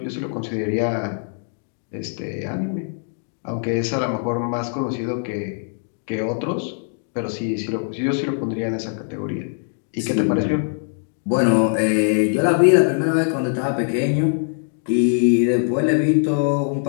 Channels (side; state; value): right; silent; digital silence